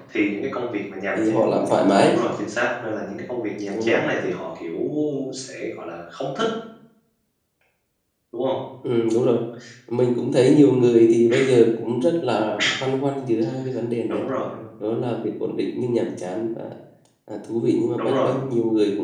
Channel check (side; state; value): both; identical; correlation 1.00